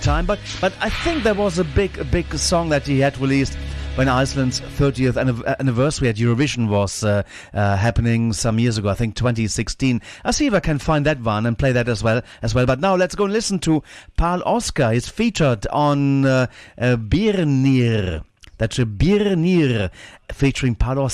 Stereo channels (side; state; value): both; identical; correlation 1.00